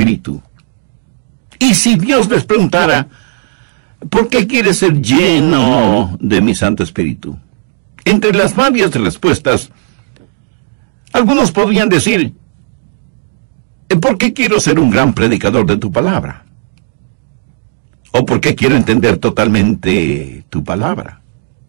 Y si Dios les preguntara, ¿por qué quieres ser lleno de mi Santo Espíritu? Entre las varias respuestas, algunos podrían decir, ¿por qué quiero ser un gran predicador de tu palabra? ¿O por qué quiero entender totalmente tu palabra?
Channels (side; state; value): left; silent; digital silence